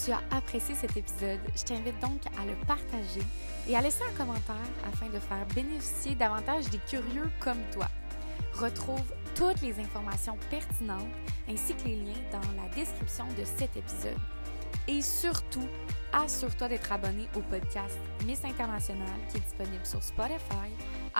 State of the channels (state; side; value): inverted; both; correlation -1.00